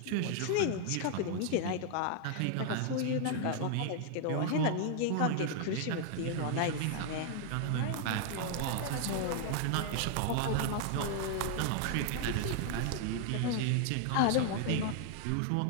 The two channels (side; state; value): both; different; correlation 0.00